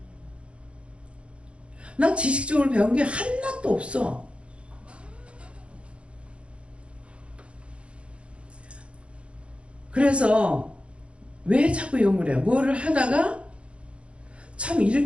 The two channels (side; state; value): left; late; 0.059 ms